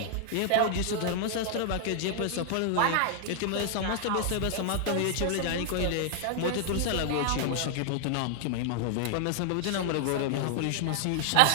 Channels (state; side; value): different; both; correlation -0.01